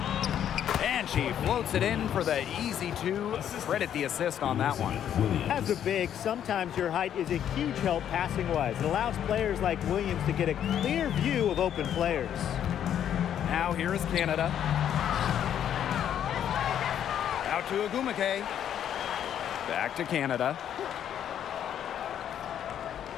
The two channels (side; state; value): right; quieter; 9.8 dB